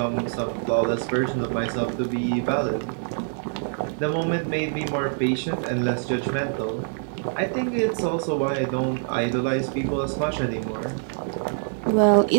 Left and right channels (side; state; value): left; silent; digital silence